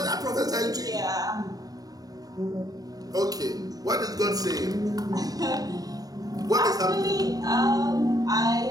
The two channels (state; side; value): late; left; 0.18 ms